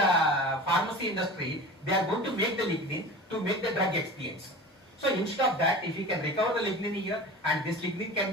pharmacy industry, they are going to make the lignin to make the drug expiates. So instead of that, if we can recover the lignin here and this lignin can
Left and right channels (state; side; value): normal; both; correlation 0.35